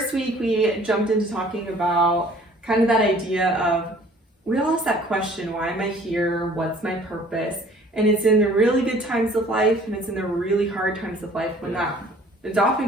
week, we jumped into talking about kind of that idea of, we all ask that question, why am I here? What's my purpose? And it's in the really good times of life, and it's in the really hard times of life when it's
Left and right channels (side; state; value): both; normal; correlation 0.53